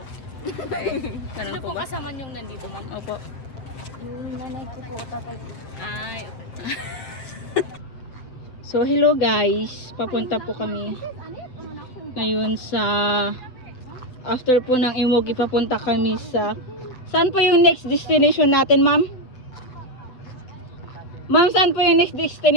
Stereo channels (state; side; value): late; right; 8.1 ms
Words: Ganun Sino po po ba? kasama niyong nandito, ma'am? Opo. Yung nanay ko po, tatay ko. Ay, okay. So, hello guys. Papunta po kami ngayon sa after po ng Imuki, papunta kami sa saan po yung next destination natin, ma'am? Ma'am, saan po yung next